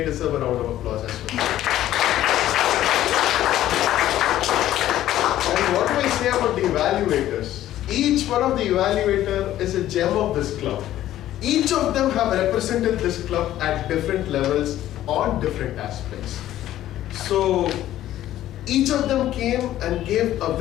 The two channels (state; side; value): quieter; right; 13.2 dB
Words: deserve a round of applause as well. And what do I say about the evaluators? Each one of the evaluator is a gem of this club. Each of them have represented this club at different levels on different aspects. So each of them came and gave a